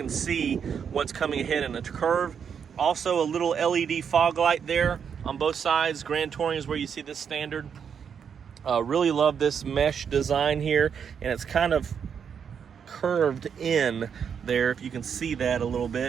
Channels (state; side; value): quieter; left; 7.3 dB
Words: see what's coming ahead in a curve. Also, a little LED fog light there on both sides. Grand Touring is where you see this standard. Really love this mesh design here, and it's kind of curved in there, if you can see that a little